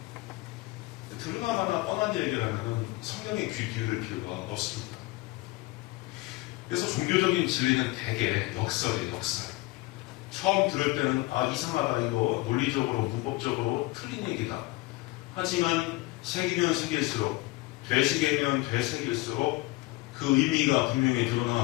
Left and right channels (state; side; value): quieter; right; 20.8 dB